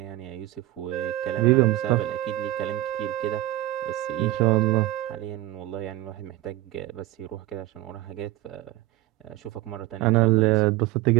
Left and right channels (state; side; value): quieter; left; 16.7 dB